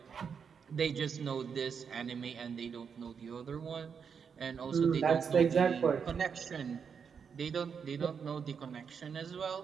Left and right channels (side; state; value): left; quieter; 6.6 dB